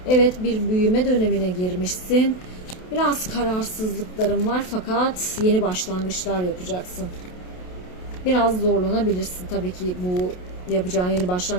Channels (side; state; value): right; late; 28 ms